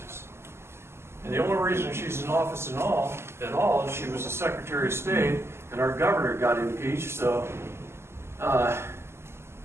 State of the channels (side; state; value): left; late; 0.12 ms